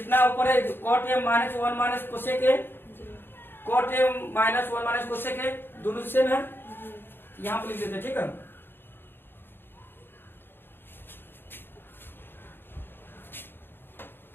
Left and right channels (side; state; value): right; late; 0.10 ms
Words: ऊपर है cot A minus 1 minus cosec A, cot A minus 1 minus cosec A दोनों सेम है, यहाँ पे लिख देते हैं। ठीक है,